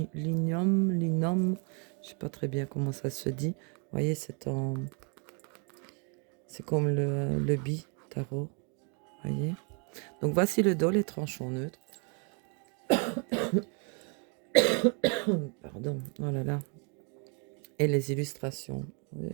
Je sais pas très bien comment ça se dit. Vous voyez, c'est en... C'est comme le bi tarot. Vous voyez. Donc voici le dos, les tranchants neutres. Pardon. Oh là là. Et les illustrations. Vous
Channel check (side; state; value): left; quieter; 37.2 dB